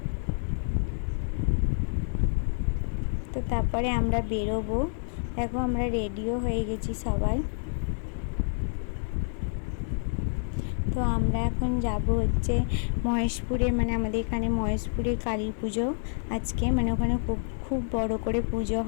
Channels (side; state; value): right; silent; digital silence